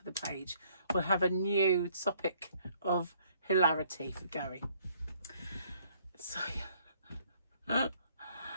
the page. We'll have a new topic of hilarity for Gary. So,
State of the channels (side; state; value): both; inverted; correlation -0.63